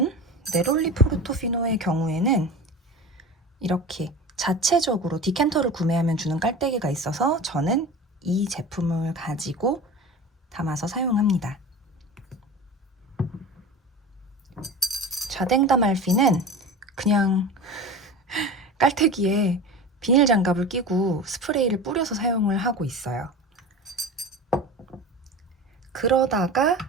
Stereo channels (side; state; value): both; normal; correlation 0.32